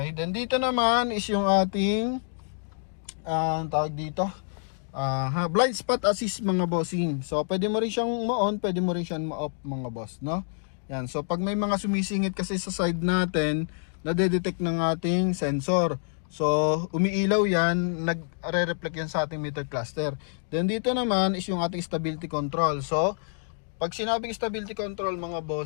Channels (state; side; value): silent; right; digital silence